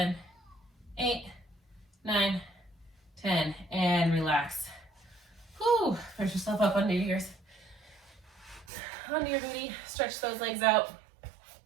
8, 9, 10, and relax. Whew, push yourself up onto your booty, stretch those legs out.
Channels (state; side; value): drops out; left; at 8.7 s